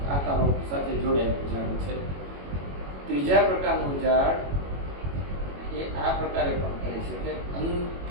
આકારો સાથે જોડાયેલું ઝાડ છે. ત્રીજા પ્રકારનું ઝાડ એ આ પ્રકારે પણ કરી શકે.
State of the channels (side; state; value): left; late; 21 ms